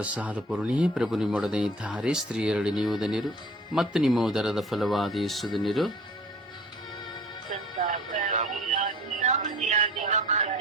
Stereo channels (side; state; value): both; normal; correlation 0.46